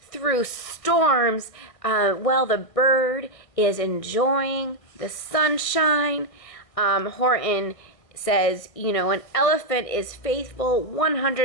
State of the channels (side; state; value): right; late; 1.5 ms